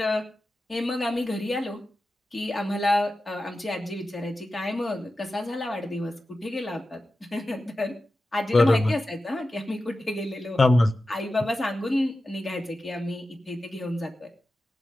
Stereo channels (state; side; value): normal; both; correlation 0.93